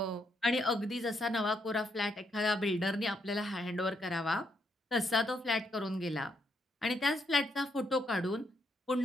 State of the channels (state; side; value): normal; both; correlation 0.77